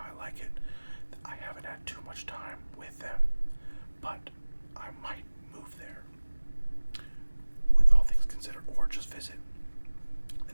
I like it. I haven't had too much time with them, but I might move there. With all things considered, or just visit. The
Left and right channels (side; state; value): both; inverted; correlation -1.00